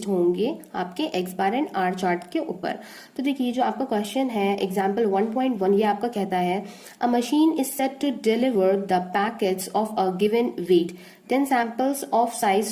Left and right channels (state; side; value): identical; both; correlation 1.00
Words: होंगे आपके X bar and R chart के ऊपर। तो देखिए जो आपका क्वेश्चन है एग्जाम्पल 1.1, ये आपका कहता है a machine is set to deliver the packets of a given weight. 10 samples of